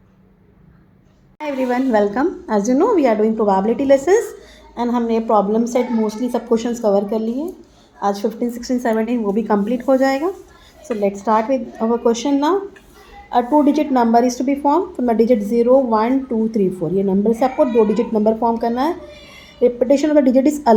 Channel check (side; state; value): both; identical; correlation 1.00